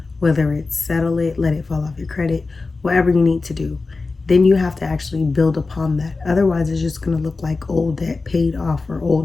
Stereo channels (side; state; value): right; quieter; 3.8 dB